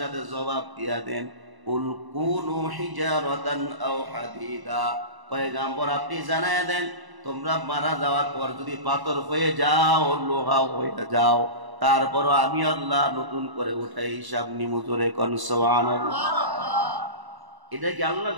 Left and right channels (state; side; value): late; left; 1.0 ms